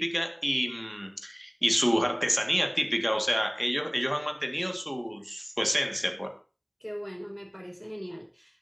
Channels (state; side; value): identical; both; correlation 1.00